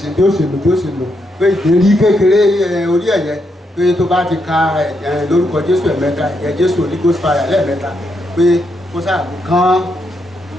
bí ó ṣe lò pé ìdérí kékeré orí ẹ̀yẹ pé tó bá ti ka lórúkọ Jésù ẹ̀mẹ́ta ẹ̀jẹ̀ Jésù Holy Ghost fire lẹ́ẹ̀mẹ́ta pé kó ṣàgbé kán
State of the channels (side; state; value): both; normal; correlation 0.80